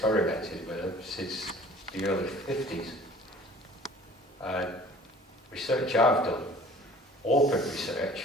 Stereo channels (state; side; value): normal; both; correlation 0.49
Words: with them since the early 50s. Research I've done, open